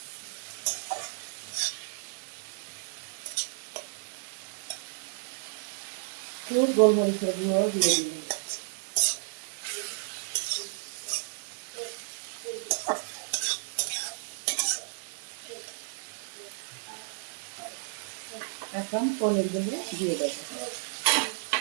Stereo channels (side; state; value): left; silent; 56 dB below the other